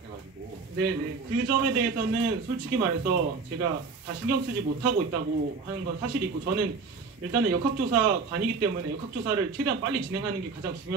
네네 그 점에 대해서는 솔직히 말해서 제가 다 신경 쓰지 못하고 있다고 하는 건 사실이고 저는 일단은 역학조사관이기 때문에 역학조사를 최대한 빨리 진행하는 게 가장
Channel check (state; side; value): quieter; left; 4.7 dB